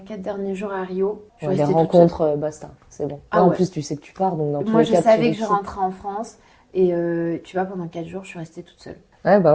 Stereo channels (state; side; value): identical; both; correlation 1.00